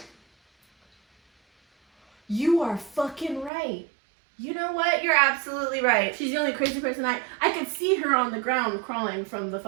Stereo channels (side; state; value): left; drops out; at 3.5 s